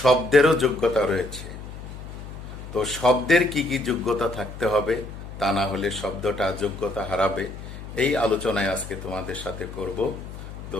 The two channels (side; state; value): left; noise; hum, 12 dB below the sound